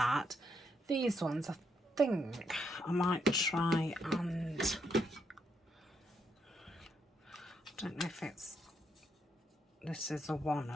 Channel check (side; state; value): both; normal; correlation 0.77